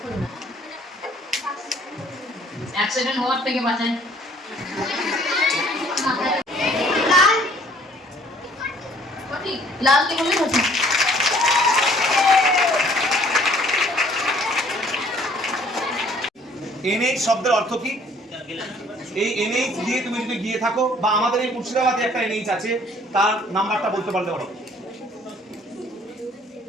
অ্যাক্সিডেন্ট হওয়ার থেকে বাঁচায়। লাল। সঠিক। লাল কে বললে সঠিক। এনএইচ শব্দের অর্থ কি? এই এনএইচ দিয়ে তুমি যদি গিয়ে থাকো বা আমাদের এই মুর্শিদাবাদে একটা এনএইচ আছে, তার নাম্বারটা বলতে পারলে পারো?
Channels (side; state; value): both; normal; correlation 0.58